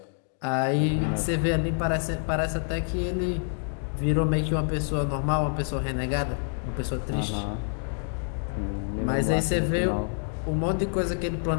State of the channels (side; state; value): right; silent; 60 dB below the other